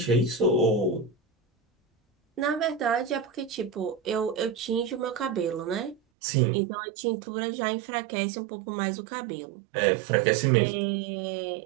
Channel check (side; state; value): left; drops out; at 6.0 s